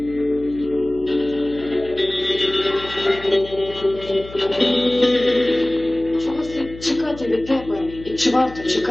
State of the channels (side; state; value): left; noise; hum, 16 dB below the sound